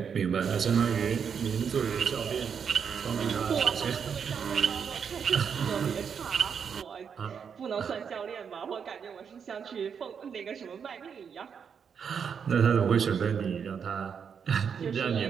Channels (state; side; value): quieter; left; 7.0 dB